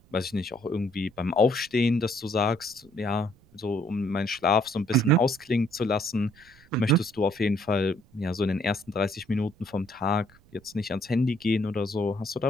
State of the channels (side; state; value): right; noise; rumble, 28 dB below the sound